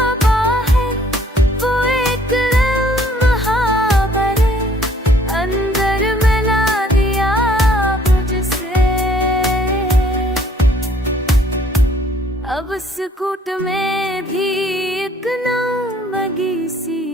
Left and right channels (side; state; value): both; normal; correlation 0.60